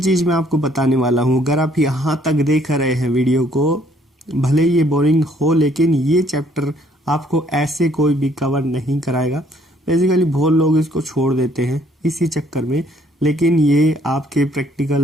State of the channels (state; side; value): normal; both; correlation 0.64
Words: चीज मैं आपको बताने वाला हूँ। अगर आप यहाँ तक देख रहे हैं वीडियो को, भले ये बोरिंग हो लेकिन ये चैप्टर आपको ऐसे कोई भी कवर नहीं कराएगा। बेसिकली बहुत लोग इसको छोड़ देते हैं इसी चक्कर में, लेकिन ये आपके